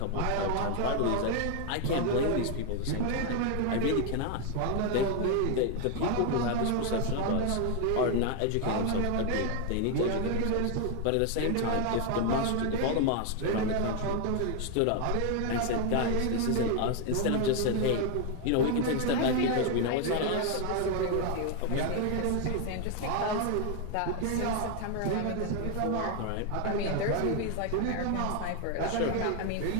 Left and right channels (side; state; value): both; different; correlation 0.01